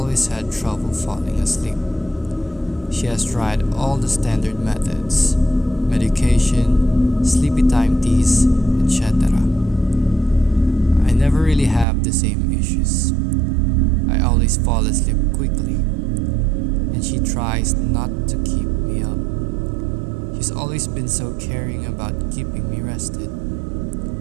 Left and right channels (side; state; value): left; drops out; at 11.9 s